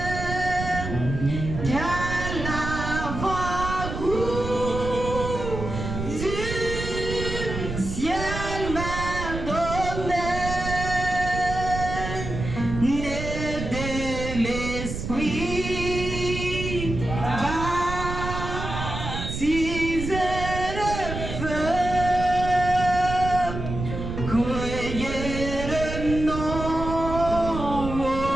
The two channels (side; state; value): right; noise; rumble, 6 dB below the sound